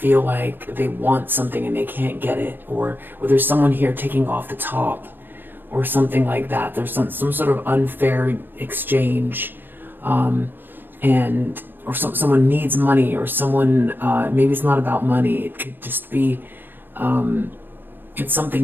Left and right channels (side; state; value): left; late; 0.094 ms